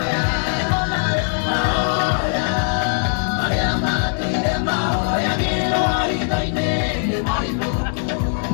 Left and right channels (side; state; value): right; silent; digital silence